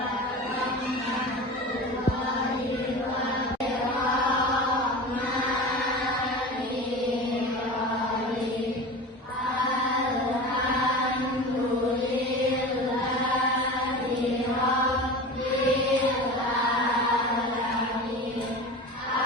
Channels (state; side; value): normal; both; correlation 0.32